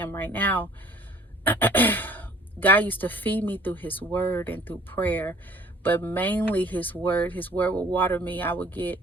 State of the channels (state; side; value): normal; both; correlation 0.53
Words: right now. God used to feed me through His Word and through prayer, but mainly His Word. His Word would water me. I would get